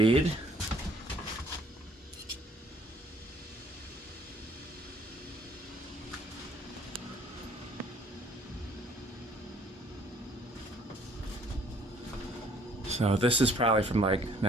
So this is probably from like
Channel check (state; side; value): normal; both; correlation 0.59